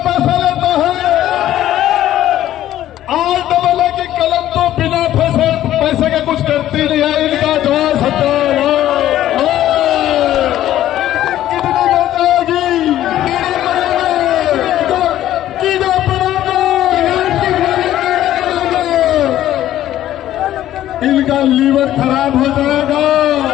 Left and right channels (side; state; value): right; quieter; 12.9 dB